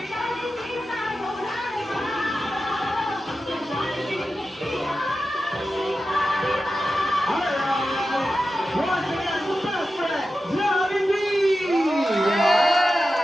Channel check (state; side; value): normal; both; correlation 0.92